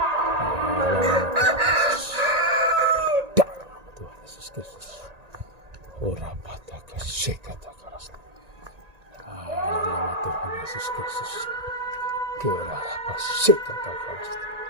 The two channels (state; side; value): late; left; 1.8 ms